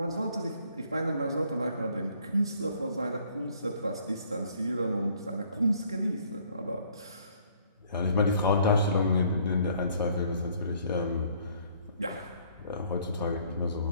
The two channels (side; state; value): both; inverted; correlation -0.61